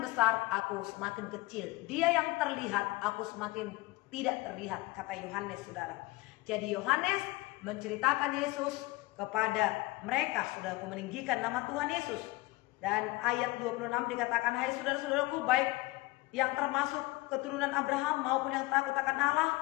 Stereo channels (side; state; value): right; quieter; 21.1 dB